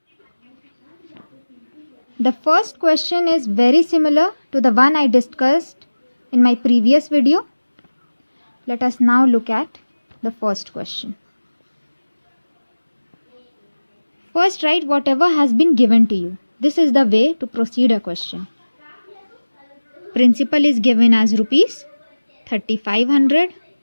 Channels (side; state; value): both; inverted; correlation -1.00